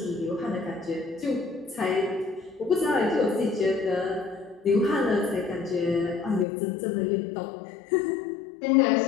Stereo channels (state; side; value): drops out; right; at 6.5 s